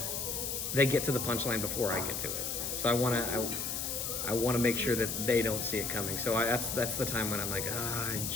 to the punchline before I get to it. So I want to make sure that they don't see it coming. So that's the time when I'm like, I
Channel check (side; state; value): left; noise; hiss, 2 dB below the sound